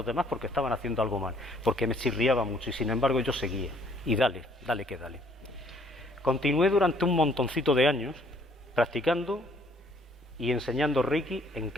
demás porque estaban haciendo algo mal, porque me chirriaba mucho, y sin embargo yo seguía, y dale que dale. Continué durante un montoncito de años practicando y enseñando Reiki en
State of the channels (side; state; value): both; normal; correlation 0.63